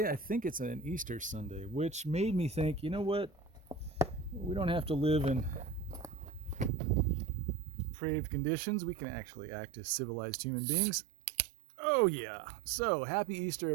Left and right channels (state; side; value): drops out; left; at 6.7 s